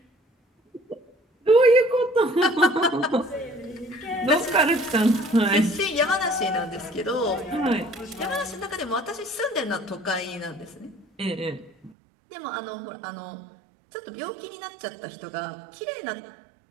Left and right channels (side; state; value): left; drops out; at 12.0 s